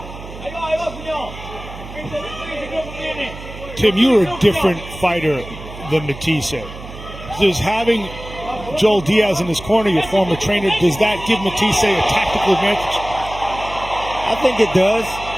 Tim, you're a different fighter than Matthysse. Does having Joel Diaz in his corner, your former trainer, does that give Matthysse a tactical advantage? I think it does.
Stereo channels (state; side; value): noise; right; hum, 13 dB below the sound